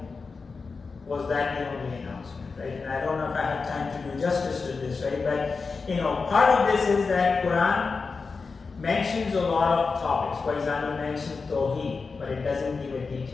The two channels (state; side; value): quieter; right; 4.6 dB